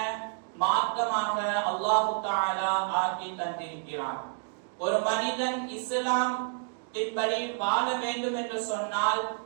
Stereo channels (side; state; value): left; silent; digital silence